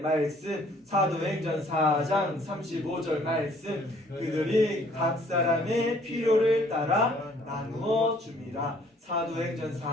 사도행전 4장 35절 말씀. 그들이 각 사람의 필요를 따라 나누어 줍니다. 사도행전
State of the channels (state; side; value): normal; both; correlation 0.60